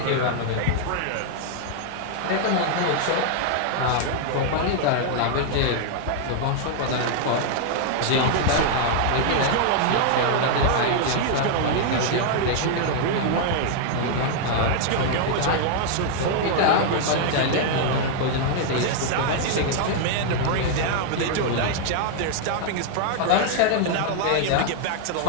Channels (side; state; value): both; different; correlation 0.00